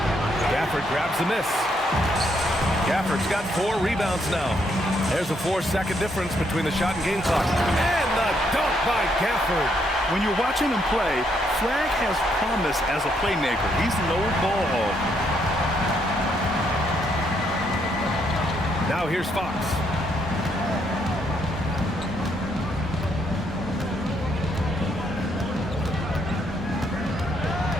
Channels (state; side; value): normal; both; correlation 0.74